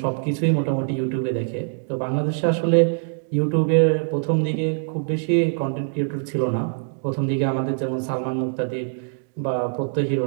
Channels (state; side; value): silent; left; digital silence